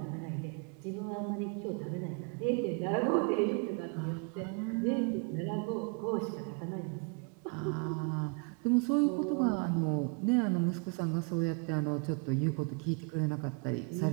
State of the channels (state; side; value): quieter; left; 34.4 dB